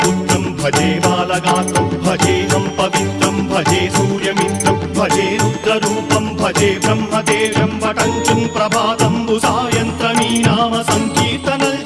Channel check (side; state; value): both; identical; correlation 1.00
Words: भजे बालगात्रं भजेऽहं पवित्रं भजे सूर्यमित्रं भजे रुद्ररूपं भजे ब्रह्मदेवं वटञ्चं ప్రభాతంబు సాయంత్రమీ నామ సంకీర్తనల్